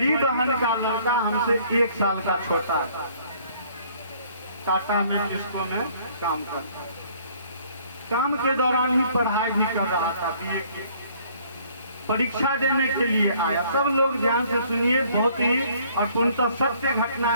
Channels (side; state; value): both; inverted; correlation -0.59